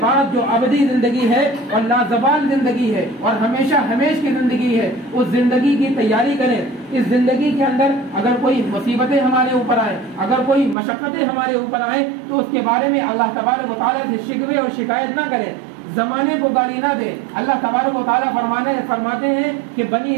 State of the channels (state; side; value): drops out; left; at 10.8 s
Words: جو ابدی زندگی ہے اور لازوال زندگی ہے اور ہمیشہ ہمیش کی زندگی ہے، اس زندگی کی تیاری کریں۔ اس زندگی کے اندر اگر کوئی مصیبتیں ہمارے اوپر آئیں، اگر کوئی مشقتیں ہمارے اوپر آئیں، تو اس کے بارے میں اللہ تبارک و تعالیٰ سے شکوے اور شکایت نہ کریں، زمانے کو گالی نہ دے۔ اللہ تبارک و تعالیٰ فرماتے ہیں کہ بنی